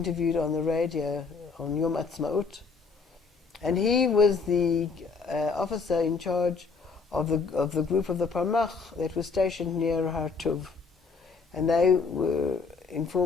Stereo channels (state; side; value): quieter; right; 4.7 dB